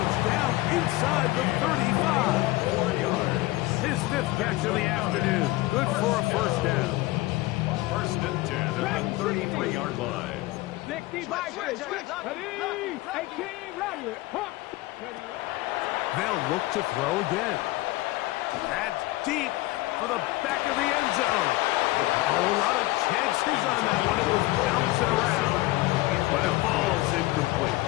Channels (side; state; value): right; quieter; 19.4 dB